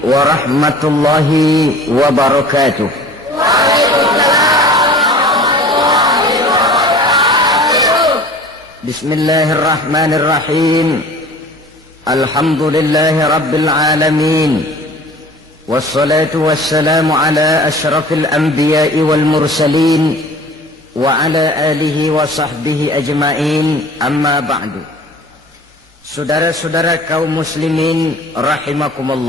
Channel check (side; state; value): both; normal; correlation 0.45